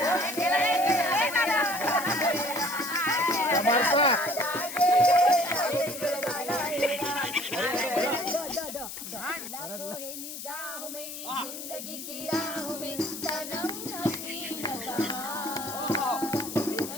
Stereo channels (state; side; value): noise; left; hiss, 9 dB below the sound